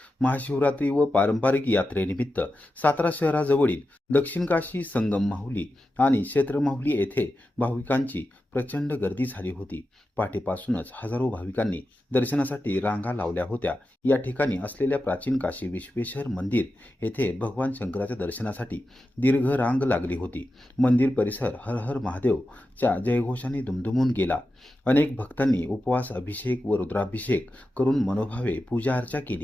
महाशिवरात्री व पारंपरिक यात्रेनिमित्त सातारा शहराजवळील दक्षिण काशी संगम माहुली आणि क्षेत्र माहुली येथे भाविकांची प्रचंड गर्दी झाली होती। पहाटेपासूनच हजारो भाविकांनी दर्शनासाठी रांगा लावल्या होत्या। या ठिकाणी असलेल्या प्राचीन काशी विश्वेश्वर मंदिर येथे भगवान शंकराच्या दर्शनासाठी दीर्घ रांग लागली होती। मंदिर परिसर हर हर महादेवच्या जयघोषाने दुमदुमून गेला। अनेक भक्तांनी उपवास, अभिषेक व रुद्राभिषेक करून मनोभावे पूजा अर्चा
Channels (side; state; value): both; normal; correlation 0.91